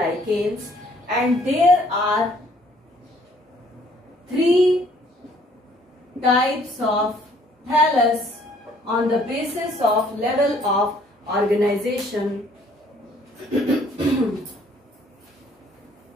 and there are 3 types of thallus on the basis of level of organization.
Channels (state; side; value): normal; both; correlation 0.61